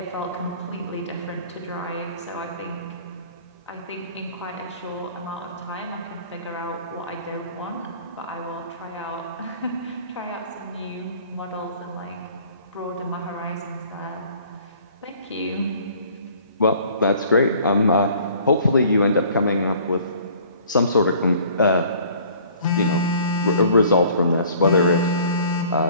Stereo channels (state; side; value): inverted; both; correlation -0.52